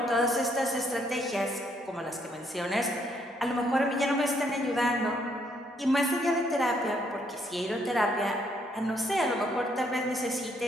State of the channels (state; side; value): normal; both; correlation 0.71